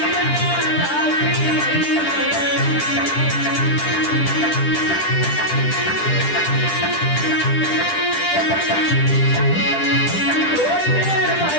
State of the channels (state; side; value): late; right; 10 ms